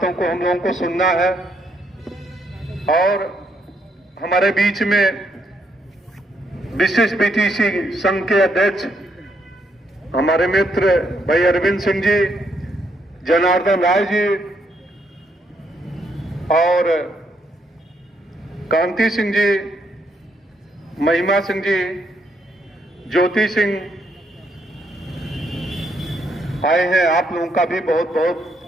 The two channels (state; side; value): normal; both; correlation 0.75